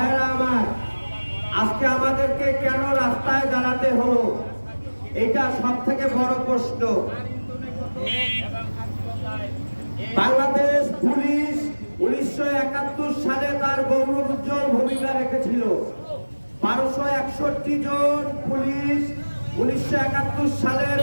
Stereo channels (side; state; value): both; inverted; correlation -1.00